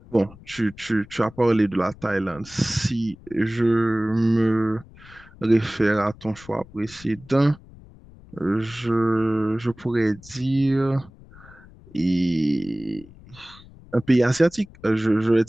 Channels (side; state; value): left; noise; rumble, 22 dB below the sound